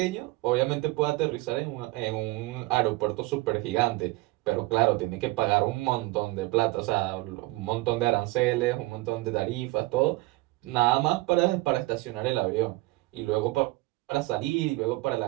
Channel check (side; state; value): left; quieter; 21.2 dB